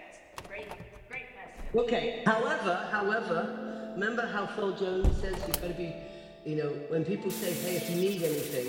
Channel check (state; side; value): identical; both; correlation 1.00